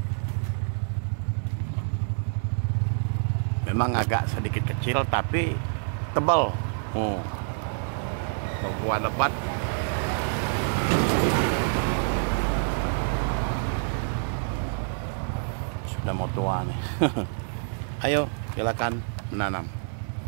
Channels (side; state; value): left; silent; 60 dB below the other